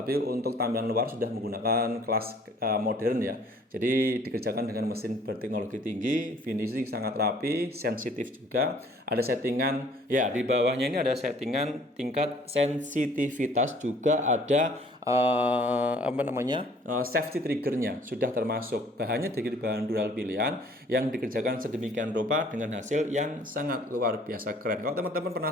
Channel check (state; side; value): normal; both; correlation 0.56